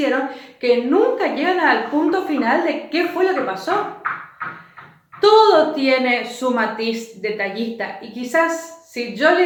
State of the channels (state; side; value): identical; both; correlation 1.00